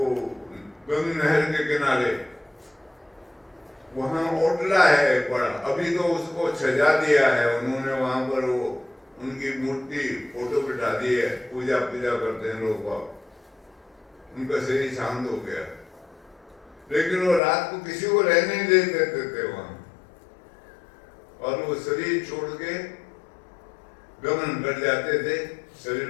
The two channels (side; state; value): right; drops out; at 17.4 s